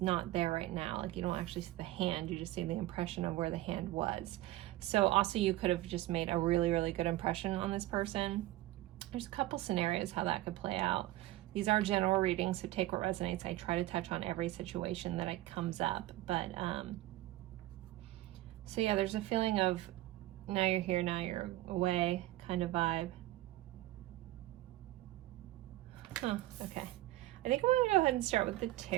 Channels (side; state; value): left; quieter; 16.5 dB